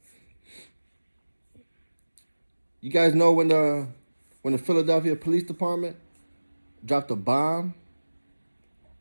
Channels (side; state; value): both; inverted; correlation -1.00